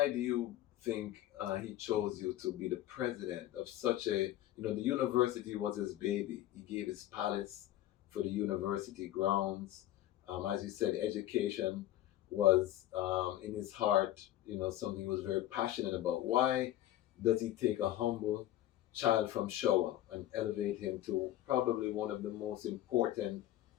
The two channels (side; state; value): right; quieter; 13.8 dB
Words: do you think he chose you to be the president of such a, the university was his baby. He gave his palace for the university grounds. As you said, education was in his heart, something he was very passionate about. Why does he take a humble child from Showa and elevate him to probably one of the most important